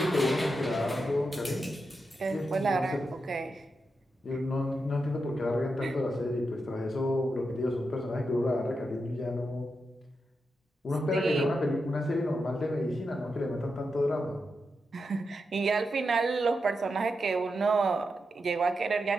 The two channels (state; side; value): normal; both; correlation 0.87